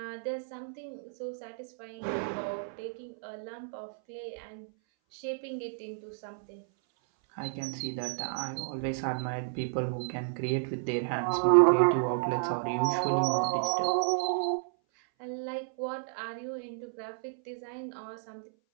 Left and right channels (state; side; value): silent; left; 56 dB below the other